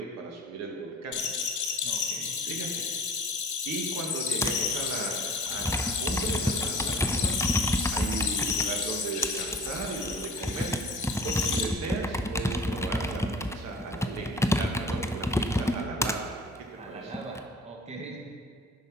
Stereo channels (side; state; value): both; normal; correlation 0.45